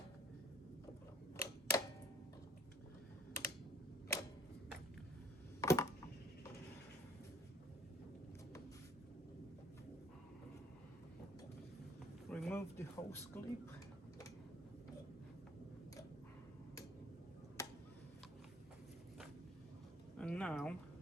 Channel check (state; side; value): normal; both; correlation 0.56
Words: remove the hose clip. And now